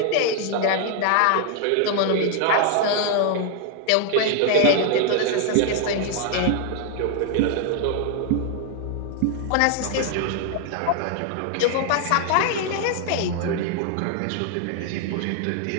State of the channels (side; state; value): both; different; correlation 0.00